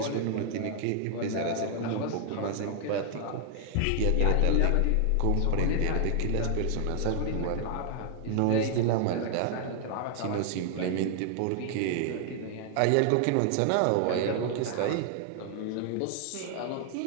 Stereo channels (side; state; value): both; different; correlation 0.00